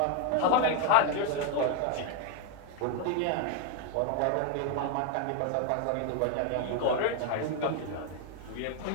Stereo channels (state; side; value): different; both; correlation 0.01